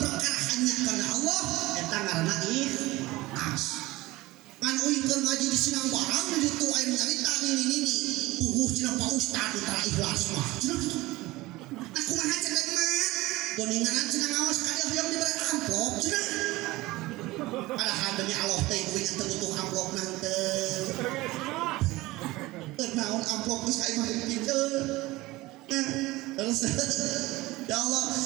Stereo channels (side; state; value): left; quieter; 19.6 dB